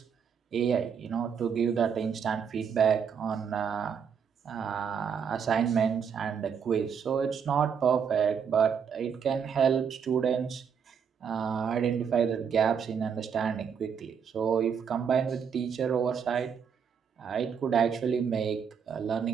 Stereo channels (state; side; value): quieter; left; 7.1 dB